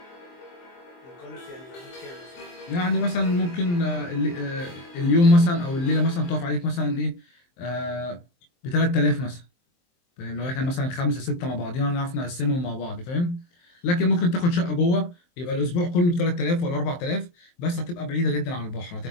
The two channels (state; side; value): late; right; 23 ms